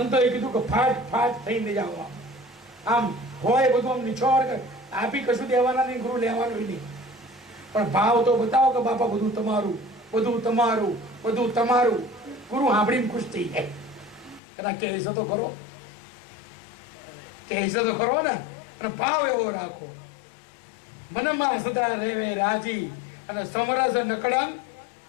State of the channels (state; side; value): drops out; right; at 14.4 s